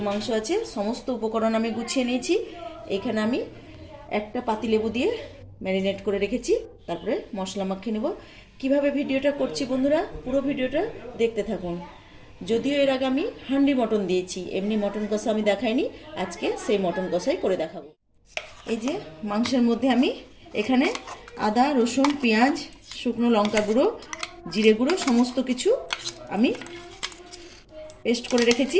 মাংস আছে। সমস্ত উপকরণ আমি গুছিয়ে নিয়েছি। এখানে আমি একটা পাতিলেবু দিয়ে ম্যারিনেট করে রেখেছি। তারপরে মশলা মাখিয়ে নেব। কিভাবে ভিডিওটা করছি বন্ধুরা, পুরো ভিডিওটা দেখতে থাকুন। যদিও এর আগে আমি হান্ডি মটন দিয়েছি, এমনি মটন কষা আমি দেখাইনি। আজকে সেই মটন কষাই করে দেখাবো। এই যে মাংসের মধ্যে আমি এখানে আদা, রসুন, পেঁয়াজ, শুকনো লঙ্কা গুঁড়ো, জিরে গুঁড়ো সমস্ত কিছু আমি পেস্ট করে রেখেছি।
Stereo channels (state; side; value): identical; both; correlation 1.00